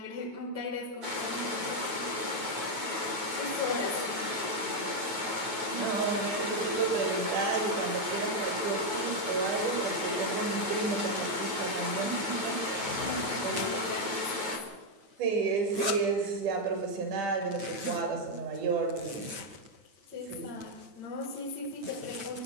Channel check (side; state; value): left; late; 9.2 ms